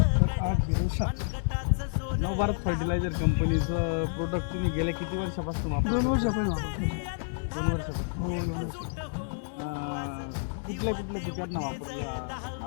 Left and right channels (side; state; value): right; silent; digital silence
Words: नवभारत फर्टिलायझर कंपनीचं प्रोडक्ट तुम्ही गेल्या किती वर्षापासून 2 वापरता? वर्षापर्यंत वापरतो. 2 वर्षापासून. हो 2 वर्ष. कुठल्या कुठल्या पिकांना वापरलं